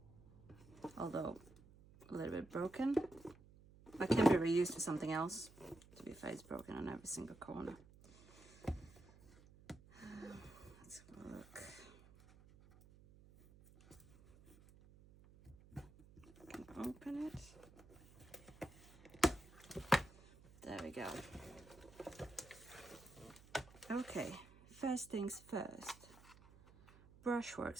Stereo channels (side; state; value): right; noise; hum, 22 dB below the sound